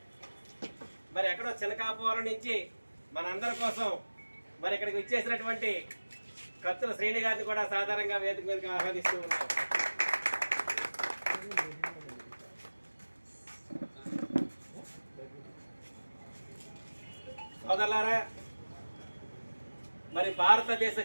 మరి ఎక్కడో చినకాపురం నుంచి మనందరి కోసం మరి ఇక్కడికి వచ్చేసినటువంటి కత్తుల శ్రేణి గారిని కూడా సాధారణంగా వేదిక మీదకి ఆహ్వానిస్తూ ఉన్నాం. సోదరులారా, మరి భారతదేశ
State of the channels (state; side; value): inverted; both; correlation -1.00